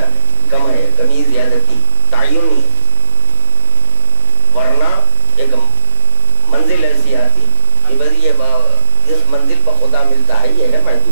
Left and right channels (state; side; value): inverted; both; correlation -0.36